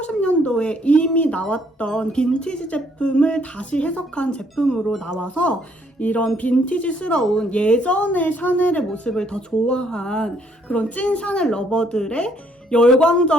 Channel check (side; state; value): both; normal; correlation 0.67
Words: 이미 나왔던 빈티지 제품을 다시 해석한 제품으로 나와서 이런 빈티지스러운 예전의 샤넬의 모습을 더 좋아한 그런 찐 샤넬 러버들의